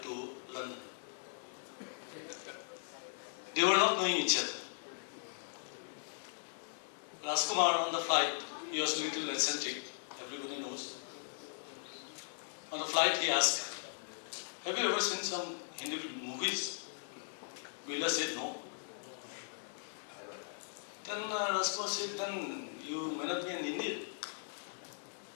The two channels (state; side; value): silent; right; digital silence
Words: to London. They were not knowing each other. Rajkumar on the flight, he was a little eccentric, everybody knows. On the flight he asked, have you ever seen some Hindi movies? Birla said no. Then Rajkumar said, then you may not be an Indian.